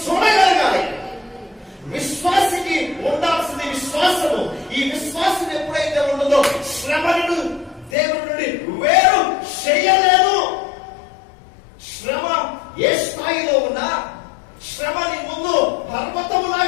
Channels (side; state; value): right; drops out; at 8.0 s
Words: చూడగలగాలి. విశ్వాసికి ఉండాల్సింది విశ్వాసము. ఈ విశ్వాసం ఎప్పుడైతే ఉండదో శ్రమను దేవుడి నుండి వేరు చేయలేదు. శ్రమ ఏ స్థాయిలో ఉన్నా, శ్రమ నీ ముందు